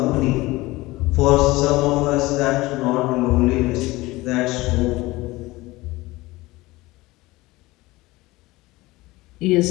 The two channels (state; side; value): quieter; right; 20.2 dB